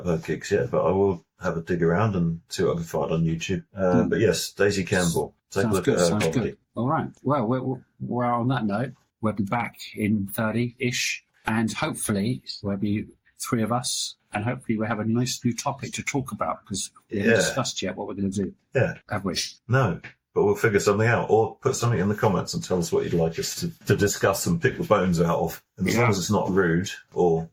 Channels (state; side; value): identical; both; correlation 1.00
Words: her gigs yet, but I will have a dig around and see what I can find on YouTube. But yes, Daisy Campbell. Take a look at her comedy. Good. All right. Well, we're on that note. We'll be back in 30-ish, and hopefully there'll be 3 of us, and hopefully we'll have a nice new topic to talk about, because we haven't discussed yet what we're going to do. Yeah. Have we? No. But we'll figure something out, or put something in the comments and tell us what you'd like us to discuss and pick the bones out of. And as long as it's not rude or